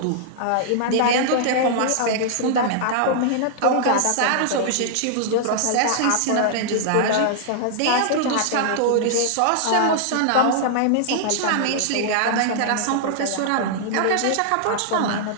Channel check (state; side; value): different; both; correlation -0.01